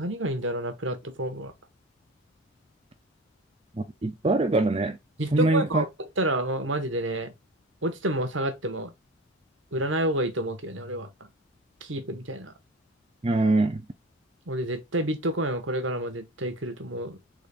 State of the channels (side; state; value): both; normal; correlation 0.33